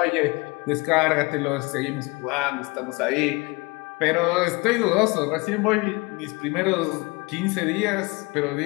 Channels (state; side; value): quieter; right; 26.3 dB